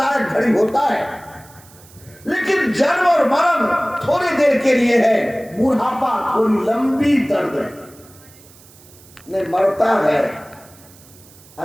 घड़ी होता है, लेकिन जन्म और मरण थोड़ी देर के लिए है, बुढ़ापा थोड़ी लंबी दर्द है। नहीं मरता है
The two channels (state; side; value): noise; right; hiss, 24 dB below the sound